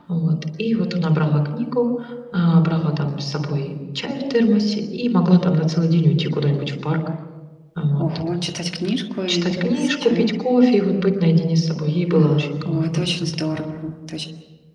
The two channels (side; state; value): both; identical; correlation 1.00